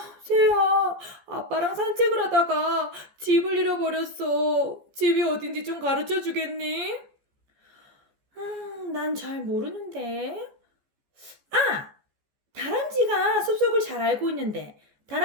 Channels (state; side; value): late; left; 14 ms